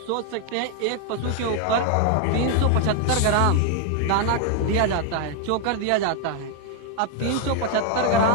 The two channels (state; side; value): different; both; correlation 0.00